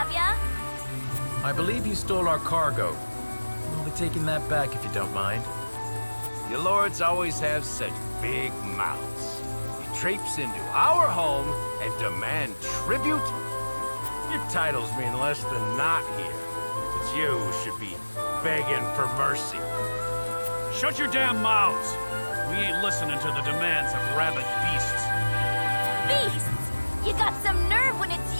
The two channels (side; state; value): both; inverted; correlation -1.00